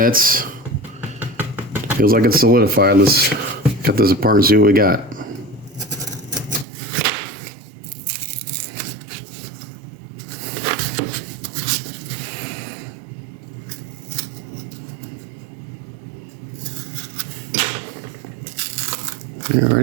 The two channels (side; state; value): left; drops out; at 6.7 s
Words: Feels like it's solidified. Let's cut this apart and see what we got.